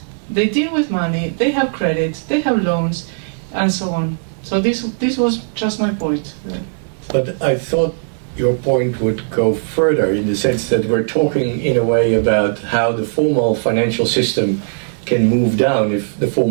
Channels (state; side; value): silent; left; digital silence